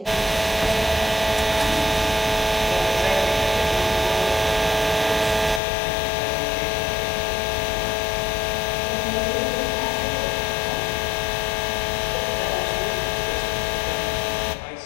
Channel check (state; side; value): drops out; right; at 5.6 s